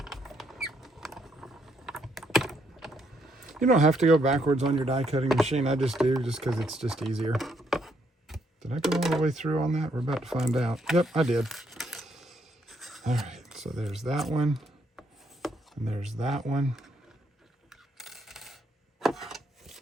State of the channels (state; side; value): normal; both; correlation 0.73